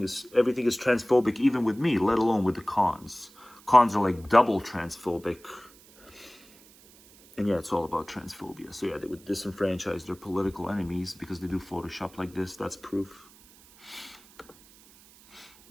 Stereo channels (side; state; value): right; noise; hiss, 25 dB below the sound